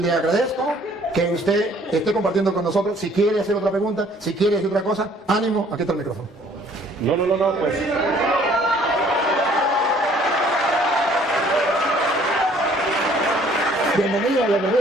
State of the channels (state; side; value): normal; both; correlation 0.58